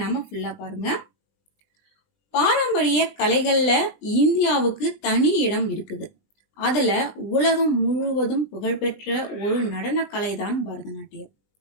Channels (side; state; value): right; late; 20 ms